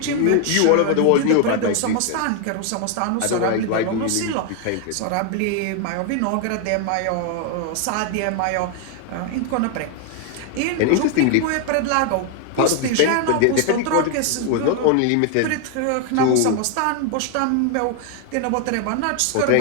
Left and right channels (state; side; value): different; both; correlation 0.01